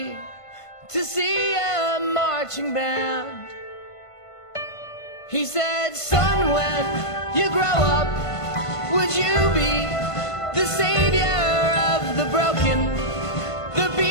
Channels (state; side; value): late; right; 1.5 ms